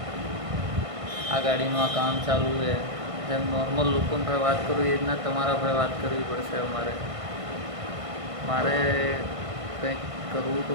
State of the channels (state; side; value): late; left; 1.5 ms